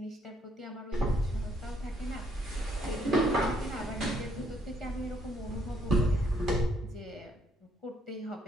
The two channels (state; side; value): normal; both; correlation 0.70